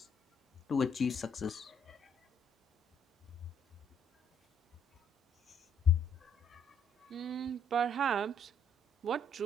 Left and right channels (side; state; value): both; normal; correlation 0.67